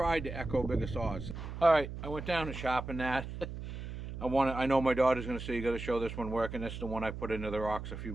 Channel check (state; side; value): noise; right; hum, 8 dB below the sound